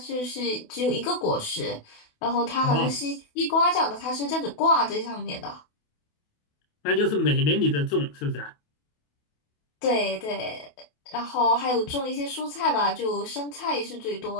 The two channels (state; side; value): late; right; 28 ms